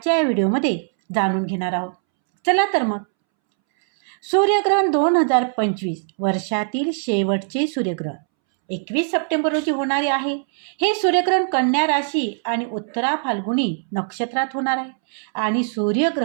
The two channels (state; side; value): silent; left; 65 dB below the other